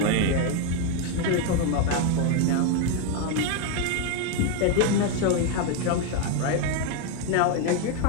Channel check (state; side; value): different; both; correlation 0.01